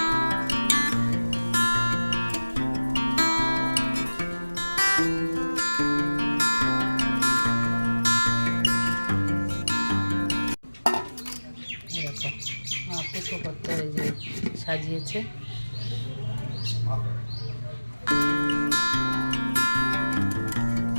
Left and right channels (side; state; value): both; inverted; correlation -1.00